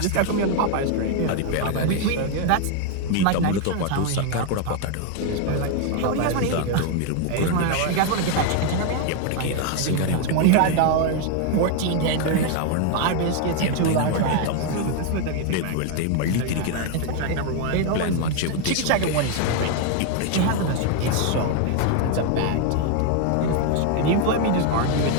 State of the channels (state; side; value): different; both; correlation 0.01